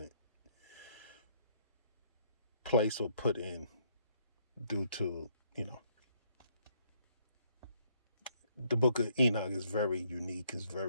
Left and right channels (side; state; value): both; inverted; correlation -0.69